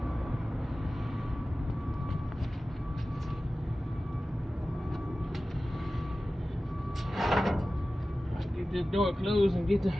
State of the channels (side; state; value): both; normal; correlation 0.96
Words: Get this door closed and get